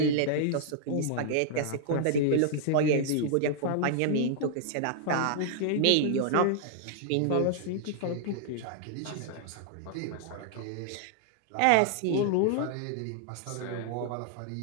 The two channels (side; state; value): both; different; correlation -0.01